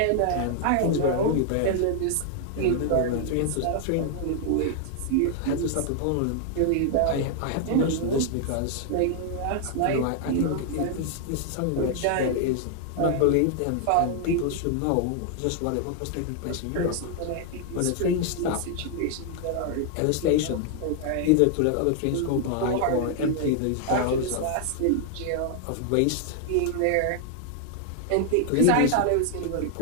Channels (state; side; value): different; both; correlation 0.00